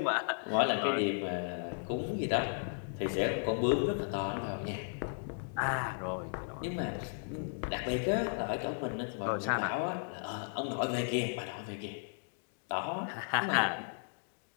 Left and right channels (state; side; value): silent; right; digital silence